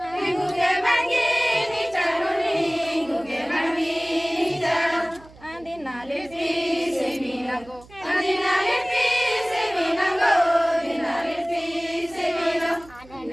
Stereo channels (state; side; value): noise; right; hum, 23 dB below the sound